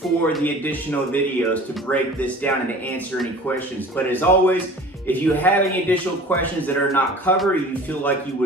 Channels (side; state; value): both; normal; correlation 0.43